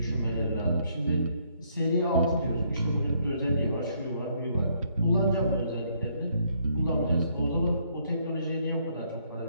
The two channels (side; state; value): both; inverted; correlation -0.69